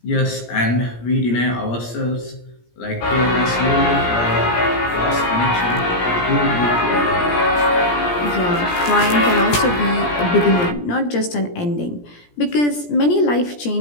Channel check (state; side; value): late; right; 17 ms